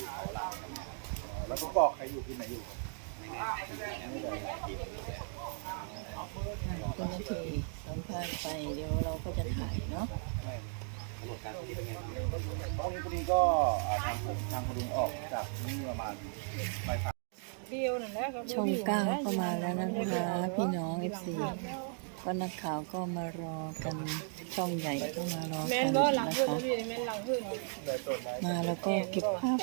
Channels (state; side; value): silent; left; 54 dB below the other